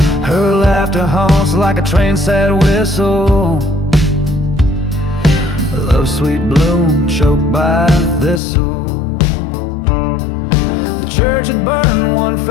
Her laughter haunts like a train's sad whistle. Love's sweet bloom choked by thistle. The church had burned one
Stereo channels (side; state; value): right; drops out; at 8.4 s